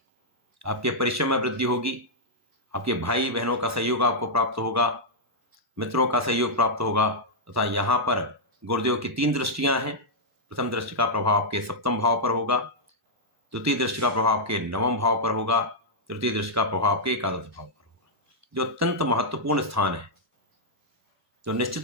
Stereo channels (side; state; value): both; normal; correlation -0.07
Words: आपके परिश्रम में वृद्धि होगी, आपके भाई बहनों का सहयोग आपको प्राप्त होगा, मित्रों का सहयोग प्राप्त होगा, तथा यहाँ पर गुरुदेव की 3 दृष्टियां हैं। प्रथम दृष्टि का प्रभाव आपके सप्तम भाव पर होगा, द्वितीय दृष्टि का प्रभाव आपके नवम भाव पर होगा, तृतीय दृष्टि का प्रभाव आपके एकादश भाव पर होगा, जो अत्यंत महत्वपूर्ण स्थान है। तो